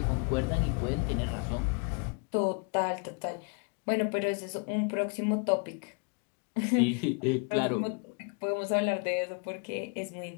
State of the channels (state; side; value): quieter; right; 35.7 dB